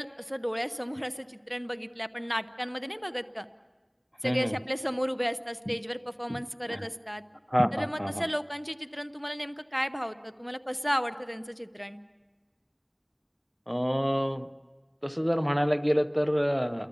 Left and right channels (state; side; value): identical; both; correlation 1.00